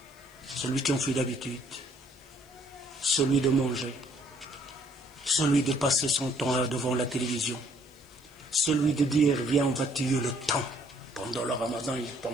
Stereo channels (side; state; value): left; noise; hiss, 29 dB below the sound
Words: Celui qui en fait d'habitude, celui de manger, celui de passer son temps devant la télévision, celui de dire viens on va tuer le temps. Pendant le ramadan il ne